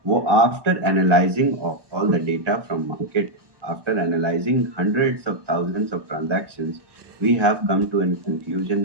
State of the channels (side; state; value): left; late; 1.2 ms